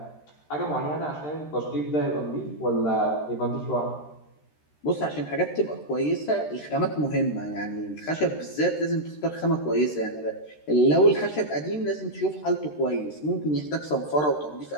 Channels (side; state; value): right; late; 13 ms